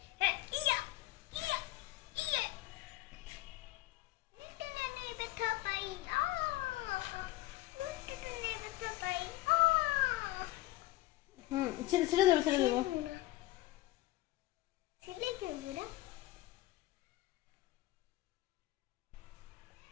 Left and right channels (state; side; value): quieter; right; 17.5 dB